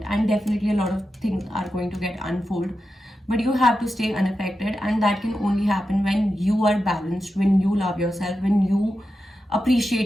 and definitely a lot of things are going to get unfold, but you have to stay unaffected, and that can only happen when you are balanced, when you love yourself, when you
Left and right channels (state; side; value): normal; both; correlation 0.90